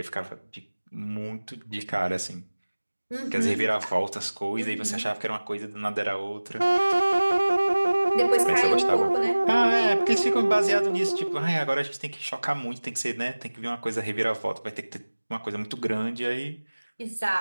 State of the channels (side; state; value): both; inverted; correlation -1.00